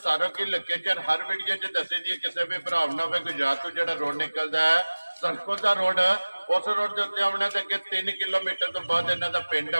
सारा की लोकेशन हर वीडियो च दसी दी। किसी भी भरा ना होवे गुजरात तो जिहड़ा रोड निकलदा है सरकोदा रोड, उस रोड के उत्ते आउणा ते अगे 3 किलोमीटर तो बाद इन्हां दा पिंड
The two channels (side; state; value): both; inverted; correlation -1.00